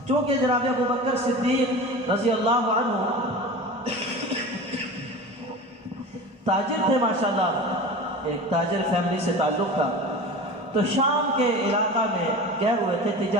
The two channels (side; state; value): both; normal; correlation 0.33